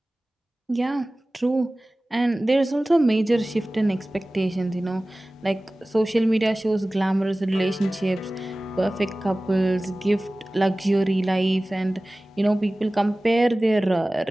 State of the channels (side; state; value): both; normal; correlation 0.98